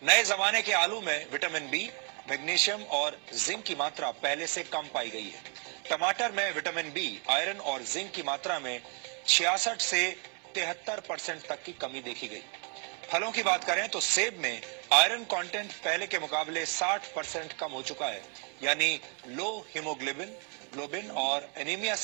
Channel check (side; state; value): left; quieter; 37.6 dB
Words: नए जमाने के आलू में विटामिन बी, मैग्नीशियम और जिंक की मात्रा पहले से कम पाई गई है। टमाटर में विटामिन बी, आयरन और जिंक की मात्रा में 66 से 73% तक की कमी देखी गई। फलों की बात करें तो सेब में आयरन कंटेंट पहले के मुकाबले 60% कम हो चुका है, यानी लो हीमोग्लोबिन और एनीमिया